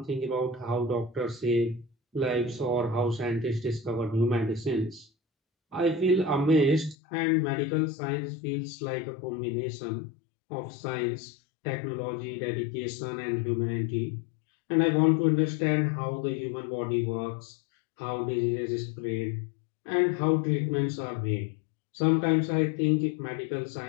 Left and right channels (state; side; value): drops out; right; at 7.0 s